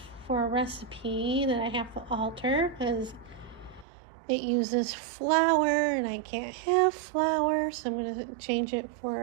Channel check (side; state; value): left; drops out; at 3.9 s